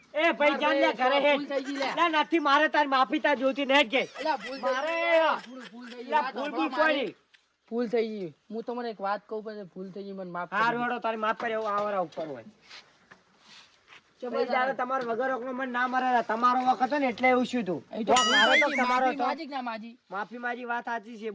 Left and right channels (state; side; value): identical; both; correlation 1.00